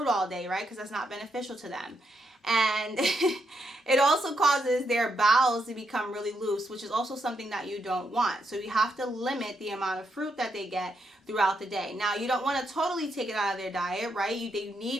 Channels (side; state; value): both; normal; correlation 0.79